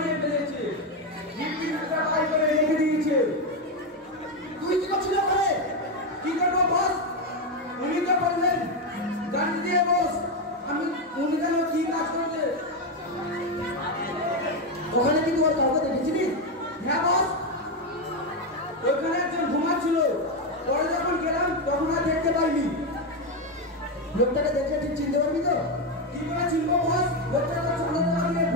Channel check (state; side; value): normal; both; correlation 0.08